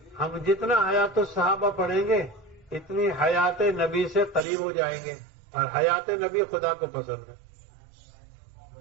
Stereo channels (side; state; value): left; drops out; at 4.5 s